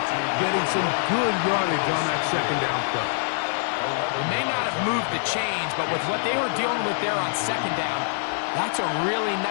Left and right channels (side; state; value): right; silent; 62 dB below the other